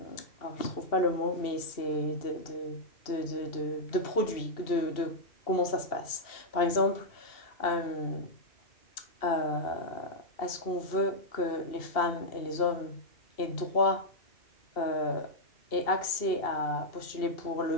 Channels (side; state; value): right; late; 2.7 ms